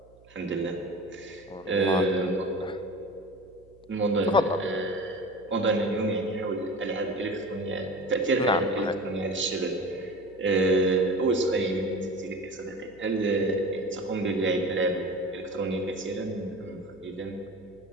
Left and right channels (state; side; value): noise; right; hum, 27 dB below the sound